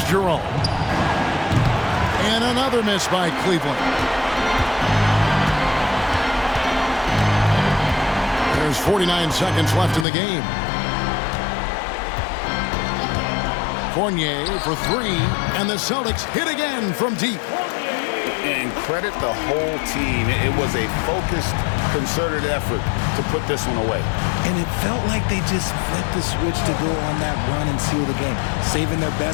Jerome. And another miss by Cleveland. There's 49 seconds left in the game. Fournier for three, and the Celtics hit again from deep. And credit the whole team. It was a focused, concerted effort to put this one away. And it felt like they just flipped the switch to go on that run and seal the game. Saving their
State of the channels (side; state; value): right; drops out; at 10.1 s